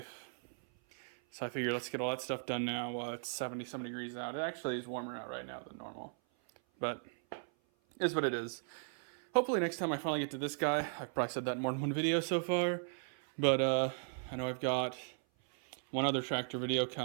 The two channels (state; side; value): silent; left; 53 dB below the other